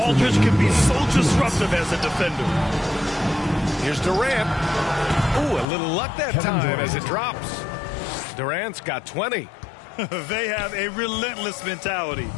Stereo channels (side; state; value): right; drops out; at 5.7 s